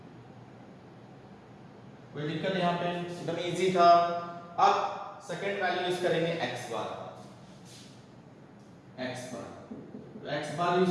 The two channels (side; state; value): both; identical; correlation 1.00